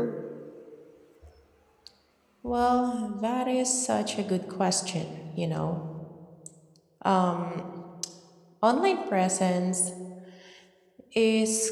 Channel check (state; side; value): identical; both; correlation 1.00